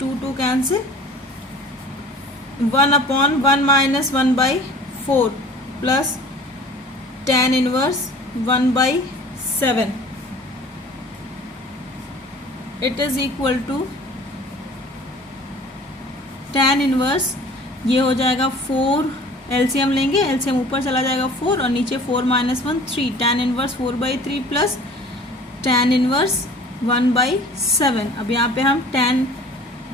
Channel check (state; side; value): normal; both; correlation 0.46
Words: 2 cancel, 1 upon 1 minus 1/4 plus tan inverse 1/7 it is equal to tan inverse, ये हो जाएगा 4, LCM लेंगे, LCM ऊपर चला जाएगा 4 और नीचे 4 - 1 3, tan inverse 4/3 plus tan inverse 1/7। अब यहाँ पे हम tan